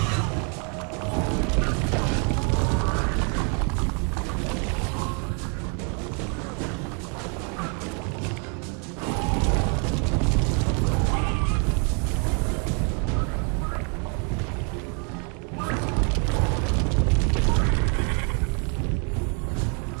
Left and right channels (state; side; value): quieter; left; 38.4 dB